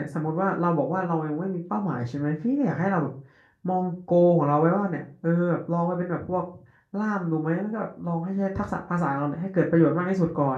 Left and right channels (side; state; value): both; identical; correlation 1.00